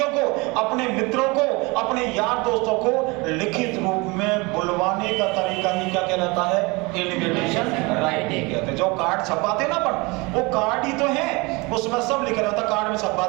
को, अपने मित्रों को, अपने यार दोस्तों को लिखित रूप में बुलवाने का तरीका ही क्या कहलाता है? इनविटेशन राइटिंग कहते हैं। जो कार्ड छपाते ना अपन, वो कार्ड ही तो है, उसमें सब लिखा रहता, कार्ड में छपा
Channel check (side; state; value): left; quieter; 26.0 dB